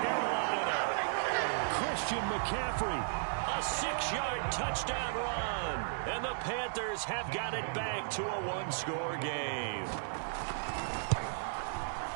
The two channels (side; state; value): left; silent; digital silence